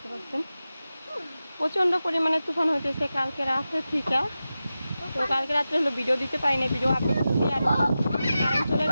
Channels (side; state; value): both; inverted; correlation -0.93